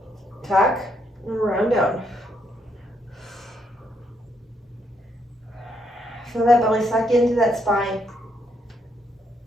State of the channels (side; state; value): both; normal; correlation 0.75